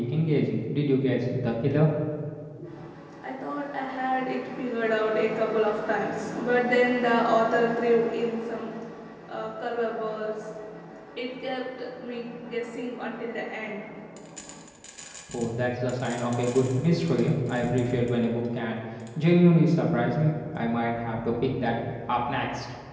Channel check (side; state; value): both; identical; correlation 1.00